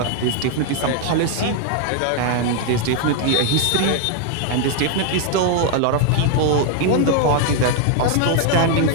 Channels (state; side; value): different; both; correlation 0.00